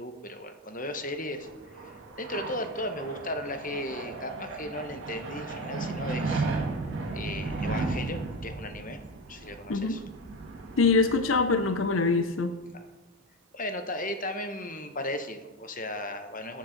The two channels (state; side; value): normal; both; correlation 0.17